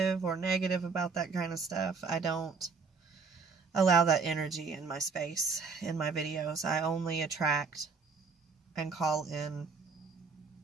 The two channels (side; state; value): left; quieter; 4.9 dB